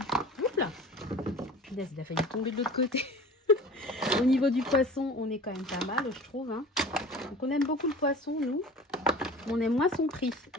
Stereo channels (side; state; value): both; normal; correlation 0.40